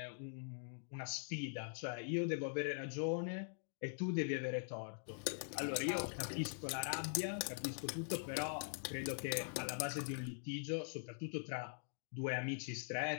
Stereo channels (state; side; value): silent; right; digital silence